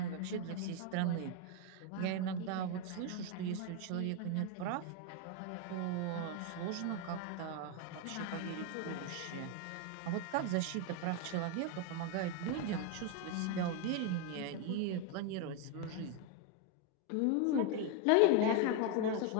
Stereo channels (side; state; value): both; different; correlation 0.01